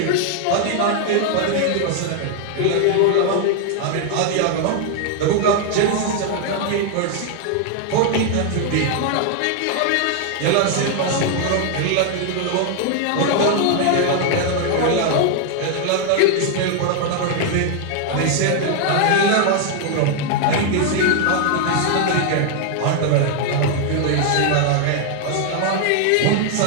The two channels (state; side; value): different; both; correlation 0.00